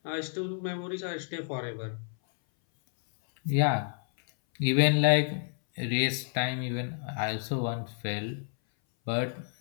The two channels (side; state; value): right; silent; 58 dB below the other